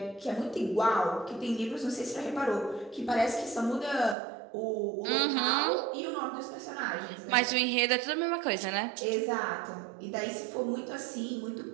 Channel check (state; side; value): drops out; left; at 4.2 s